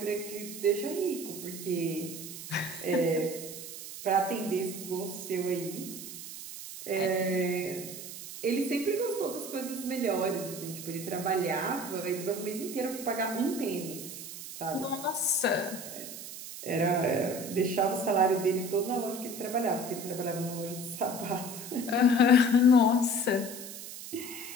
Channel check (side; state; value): right; noise; hiss, 11 dB below the sound